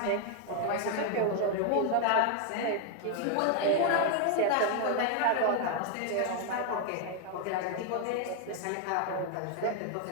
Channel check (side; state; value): both; different; correlation 0.00